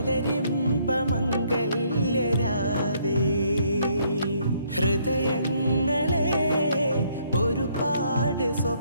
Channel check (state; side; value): inverted; both; correlation -0.68